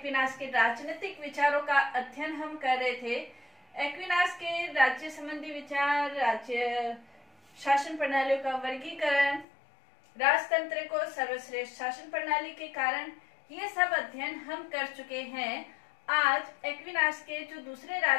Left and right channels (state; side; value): drops out; right; at 9.5 s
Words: के राजनीतिक विचारों का अध्ययन हम कर रहे थे। एक्विनास के राज्य संबंधी विचार, राज्य शासन प्रणालियों का वर्गीकरण, राजतंत्र को सर्वश्रेष्ठ शासन प्रणाली के कारण, ये सब अध्ययन हम कर चुके हैं। आज एक्विनास के जो दूसरे